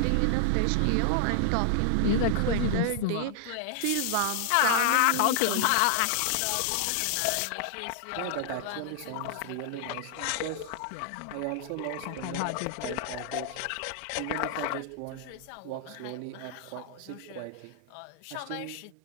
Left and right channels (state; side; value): different; both; correlation 0.00